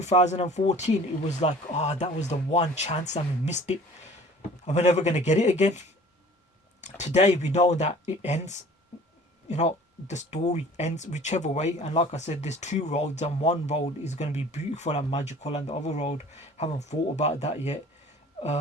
it was like, that was the one chance and we missed it, and we're never going to get it again. Today, we know that it ends. The story ends whichever way. And like I said, there's two roads, and one road is going to be beautiful and magical, and the other road, haven't thought about that yet.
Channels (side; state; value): both; normal; correlation 0.48